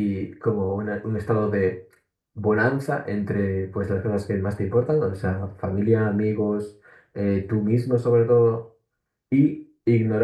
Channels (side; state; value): both; identical; correlation 1.00